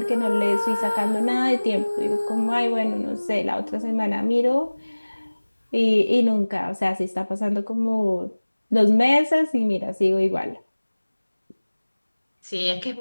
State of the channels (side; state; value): both; inverted; correlation -1.00